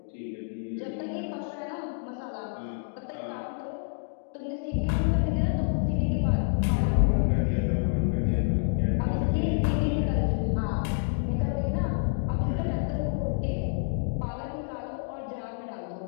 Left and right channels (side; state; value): right; silent; 59 dB below the other